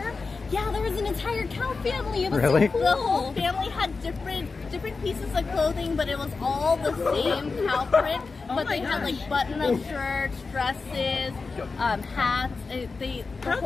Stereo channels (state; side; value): quieter; right; 4.3 dB